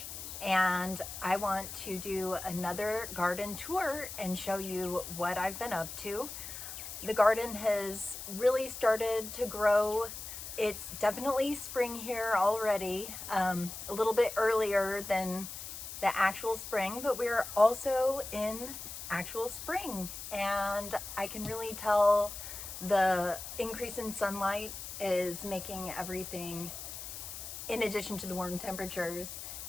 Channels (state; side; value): noise; left; hiss, 9 dB below the sound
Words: and I want to do another garden tour and show you what I've been up to. The garden has really started to grow. It's definitely spring here already, a little bit earlier than the actual spring, but we're also in actual spring and I can really tell the increase in sunlight is making everything, in addition to the warm temperatures,